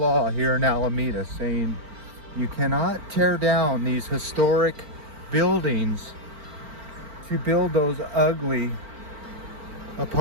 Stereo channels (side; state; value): left; late; 4.4 ms